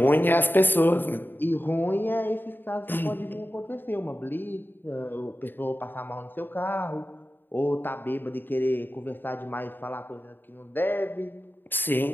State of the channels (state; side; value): late; right; 0.095 ms